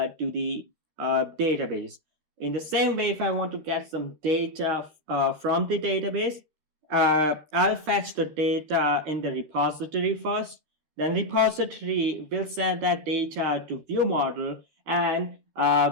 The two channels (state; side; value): late; left; 13 ms